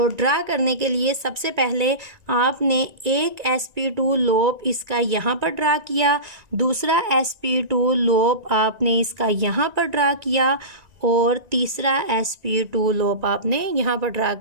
ड्रा करने के लिए सबसे पहले आपने एक sp2 लोब इसका यहाँ पर ड्रा किया, दूसरा sp2 लोब आपने इसका यहाँ पर ड्रा किया, और तीसरा sp2 लोब आपने यहाँ पर ड्रा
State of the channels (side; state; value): left; late; 1.9 ms